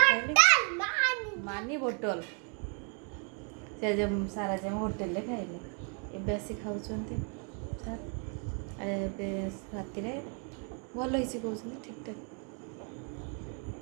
मानी बोतल से सार आज होटेल खाइले एबे आसी खाऊँ सार राति भल ही कहते ठीक ठाक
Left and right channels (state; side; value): quieter; left; 35.5 dB